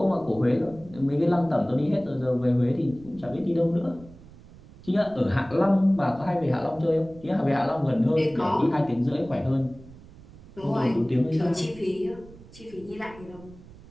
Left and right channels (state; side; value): noise; right; rumble, 20 dB below the sound